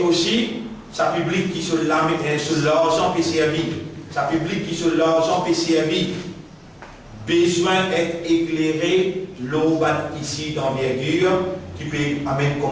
aussi, ça public qui sur l'argent PCRV, ça public qui sur l'argent PCRV, besoin d'être éclairé, l'eau ici d'envergure, qui peut amener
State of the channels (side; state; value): both; identical; correlation 1.00